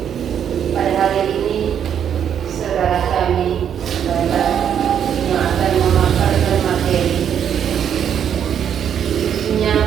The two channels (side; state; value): left; quieter; 8.8 dB